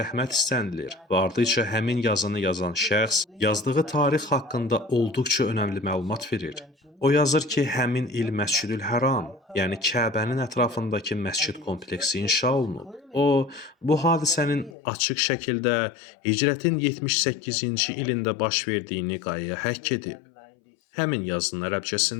istənilir və ardıca həmin yazını yazan şəxs yazdığı tarix haqqında olduqca önəmli məlumat verir. O yazır ki, həmin il Məscidül Həram, yəni Kəbənin ətrafındakı məscid kompleksi inşa olunub. O, bu hadisənin açıq şəkildə Hicrətin 78-ci ilində baş verdiyini qayaya həkk edib. Həmin yazının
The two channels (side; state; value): right; drops out; at 14.8 s